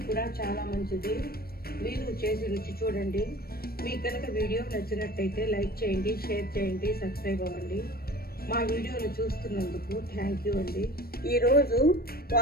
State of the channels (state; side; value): late; right; 0.44 ms